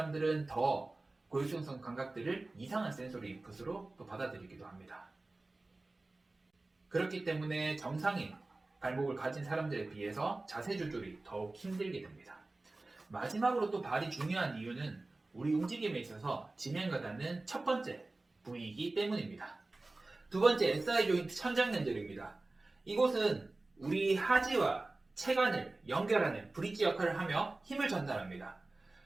더 고유수용성 감각들을 이상한 센소리 인풋으로 또 받아들이기도 합니다. 그렇기 때문에 정상인 발목을 가진 사람들에 비해서 자세 조절이 더욱 힘들게 됩니다. 마지막으로 또 발이 중요한 이유는 우리 움직임에 있어서 지면과 닿는 첫 번째 부위이기 때문입니다. 두 번째, SI 조인트 천장연결입니다. 이곳은 우리 하지와 체관을 연결하는 브릿지 역할을 하며 힘을 전달합니다.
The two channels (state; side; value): quieter; left; 3.1 dB